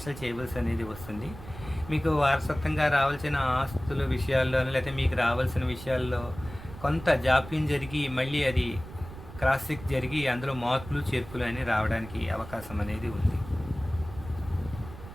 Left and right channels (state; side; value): noise; right; rumble, 14 dB below the sound